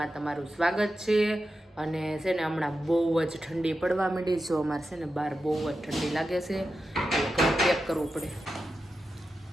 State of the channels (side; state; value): both; normal; correlation 0.90